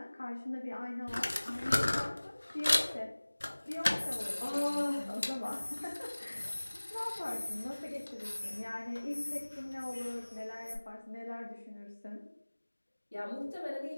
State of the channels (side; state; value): both; inverted; correlation -1.00